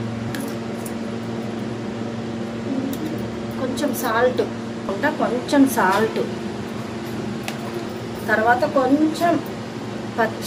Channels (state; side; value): identical; both; correlation 1.00